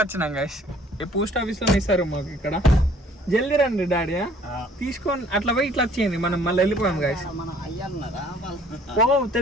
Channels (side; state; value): both; normal; correlation 0.57